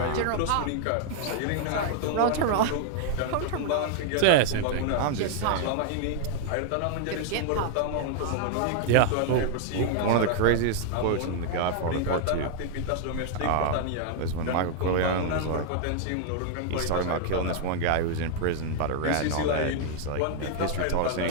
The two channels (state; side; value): different; both; correlation -0.01